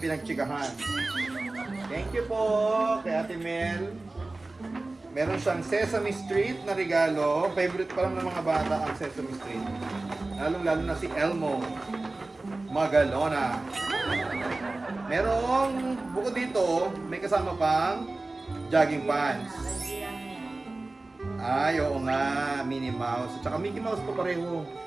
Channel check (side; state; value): left; quieter; 3.1 dB